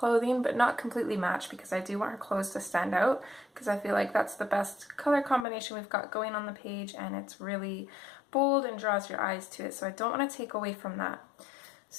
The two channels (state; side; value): drops out; right; at 5.5 s